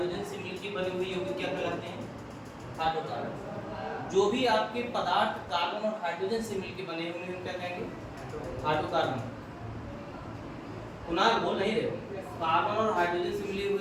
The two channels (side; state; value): both; identical; correlation 1.00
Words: से मिलकर बने हुए यौगिक क्या कहलाते हैं, हाइड्रोकार्बन। जो भी आपके पदार्थ कार्बन और हाइड्रोजन से मिलकर बने हुए हैं क्या कहेंगे, हाइड्रोकार्बन। कुणाल बोल नहीं रहे, कार्बन और हाइड्रोजन से मिले